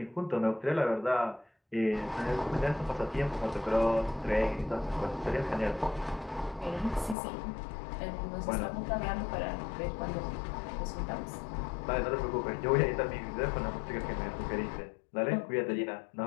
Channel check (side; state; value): right; drops out; at 7.2 s